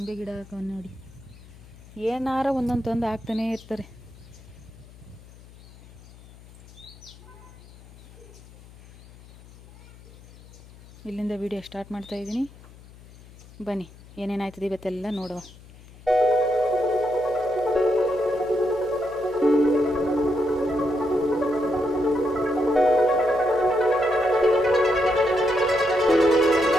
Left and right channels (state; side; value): noise; left; hum, 21 dB below the sound